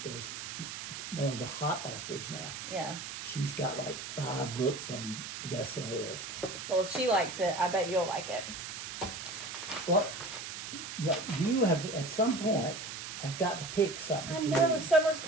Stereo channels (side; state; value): right; noise; hiss, 8 dB below the sound